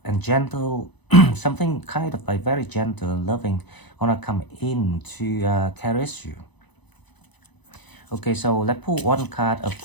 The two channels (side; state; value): right; late; 0.99 ms